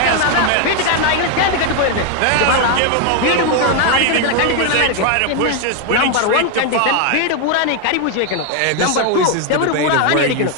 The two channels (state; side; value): different; both; correlation 0.01